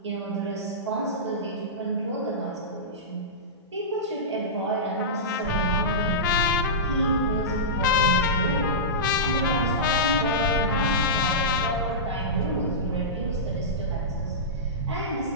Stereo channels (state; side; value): normal; both; correlation -0.17